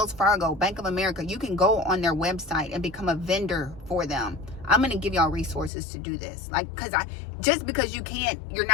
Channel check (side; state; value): right; drops out; at 5.7 s